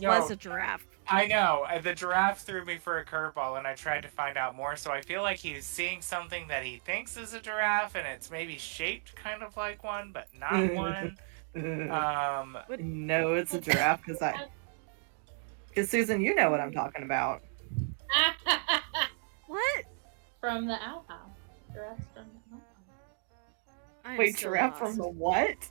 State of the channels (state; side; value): silent; left; 56 dB below the other